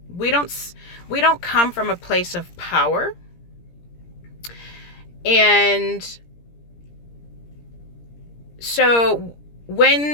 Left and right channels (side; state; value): right; late; 17 ms